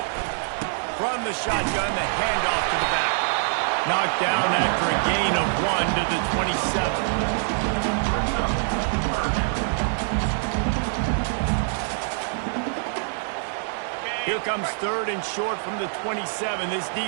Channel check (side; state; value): left; silent; digital silence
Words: From the shotgun, the handoff to the back. Knocked down after a gain of 1 to the 27. Here comes 3rd and short from the 27. This